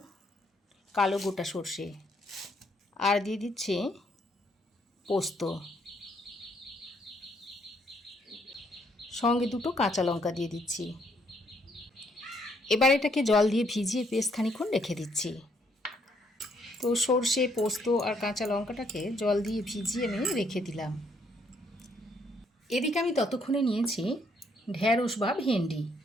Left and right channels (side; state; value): both; normal; correlation 0.70